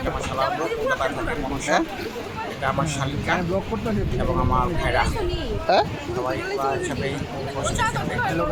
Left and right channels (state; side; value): identical; both; correlation 1.00